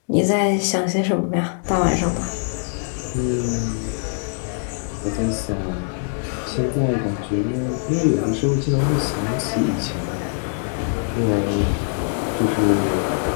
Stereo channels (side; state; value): right; silent; digital silence